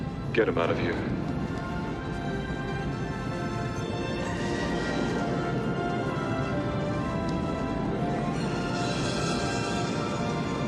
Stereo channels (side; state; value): both; identical; correlation 1.00